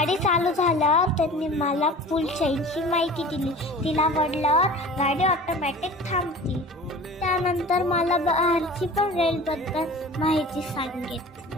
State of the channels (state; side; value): normal; both; correlation 0.41